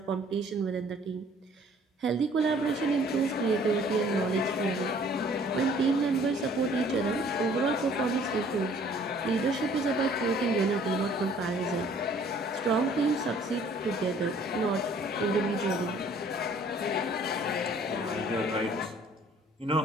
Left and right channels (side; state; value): both; normal; correlation 0.56